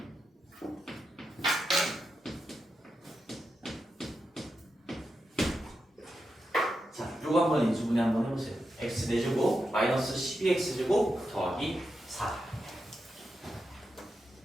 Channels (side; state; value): both; normal; correlation 0.87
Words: 자, 요거 한번 인수분해 한번 해보세요. x 4제곱 마이너스 12x제곱 더하기 4.